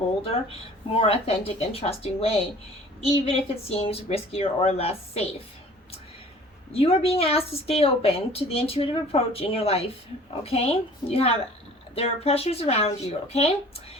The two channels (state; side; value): normal; both; correlation 0.49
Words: more authentic and trusting way, even if it seems riskier or less safe. You are being asked to stay open to the intuitive approach in your life, okay? There are pressures around you, okay?